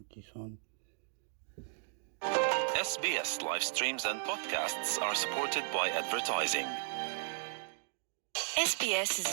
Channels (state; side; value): silent; left; digital silence